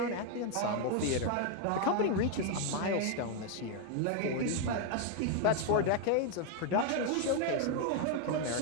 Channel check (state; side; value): different; both; correlation 0.00